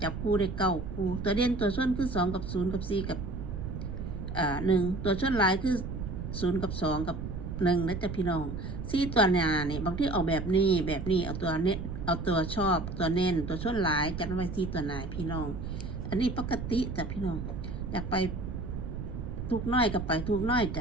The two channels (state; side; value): noise; right; rumble, 6 dB below the sound